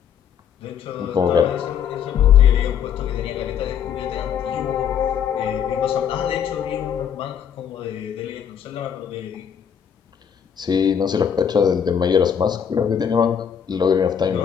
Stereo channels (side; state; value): right; quieter; 8.1 dB